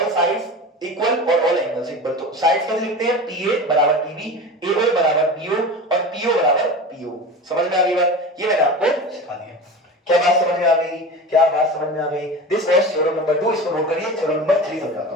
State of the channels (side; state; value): both; normal; correlation 0.31